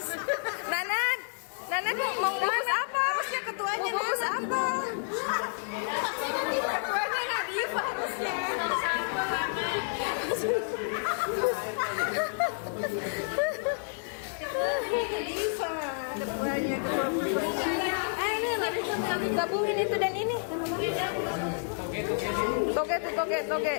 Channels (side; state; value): right; silent; digital silence